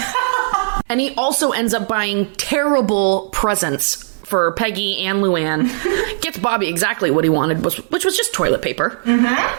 And he also ends up buying terrible presents for Peggy and Luann. Gets Bobby exactly what he wanted, which was just toilet paper. Mm-hmm.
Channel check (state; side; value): silent; left; digital silence